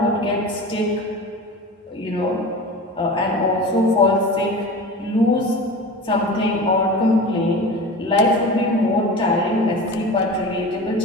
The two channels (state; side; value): normal; both; correlation 0.33